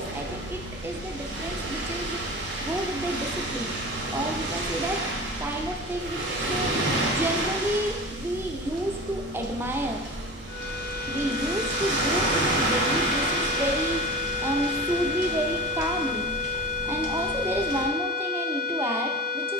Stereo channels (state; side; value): normal; both; correlation 0.33